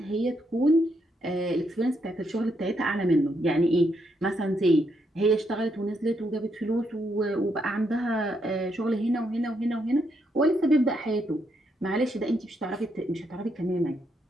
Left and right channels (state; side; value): normal; both; correlation 0.78